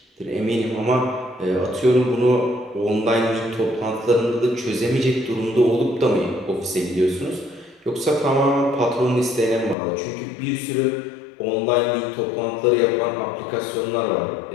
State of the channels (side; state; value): right; drops out; at 9.8 s